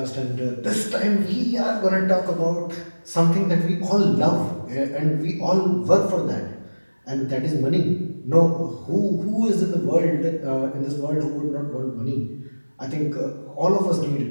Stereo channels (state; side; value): inverted; both; correlation -1.00